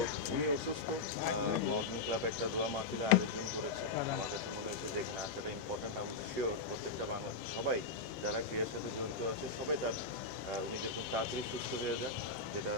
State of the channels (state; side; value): quieter; right; 4.0 dB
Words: উনি অসুস্থ, মাউন্টেন ক্লাব একটা দোয়া মাহফিলে আয়োজন করেছে। আমার কাছে মনে হয়েছে যে এখানে আসাটা ইম্পর্ট্যান্ট। আমি শিওর প্রত্যেকটা সবাই যারা ক্রিয়ার সাথে জড়িত আছে সবাই উনি যেরকম তাড়াতাড়ি সুস্থ হয়ে যাক, যেটা